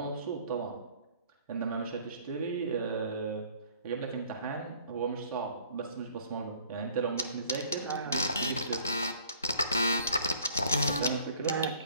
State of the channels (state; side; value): inverted; both; correlation -0.54